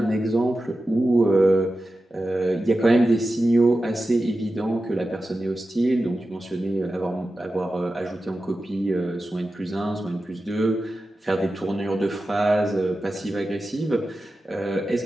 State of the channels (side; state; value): both; normal; correlation 0.93